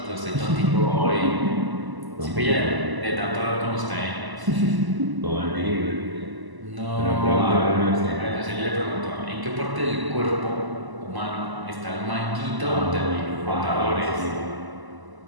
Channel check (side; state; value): left; late; 1.0 ms